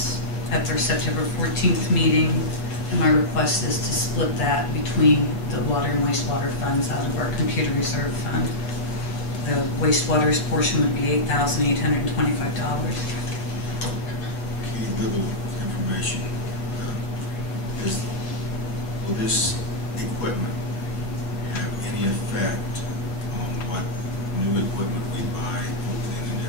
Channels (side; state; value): right; late; 7.9 ms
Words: at their September 14th meeting, and my request is to split that between the water and wastewater funds out of our computer reserve fund. The wastewater's portion would be $8,825. Okay, little information. Will this equipment have any effect on what new equipment we buy hopefully in the